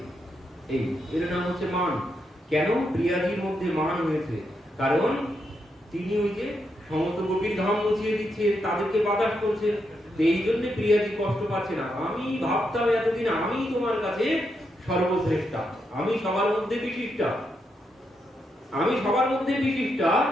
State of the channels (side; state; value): both; normal; correlation 0.82